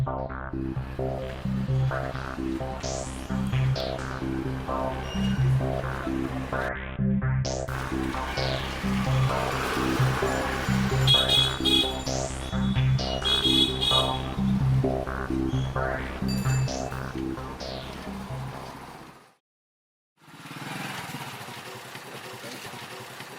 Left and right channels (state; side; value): identical; both; correlation 1.00